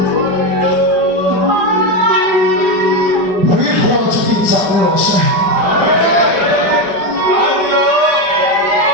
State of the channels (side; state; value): left; late; 5.0 ms